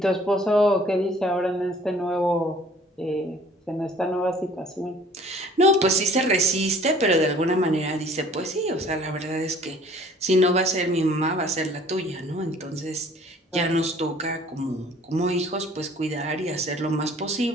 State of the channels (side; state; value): both; normal; correlation 0.53